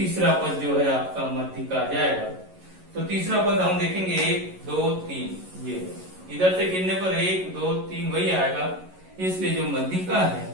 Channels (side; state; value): left; late; 11 ms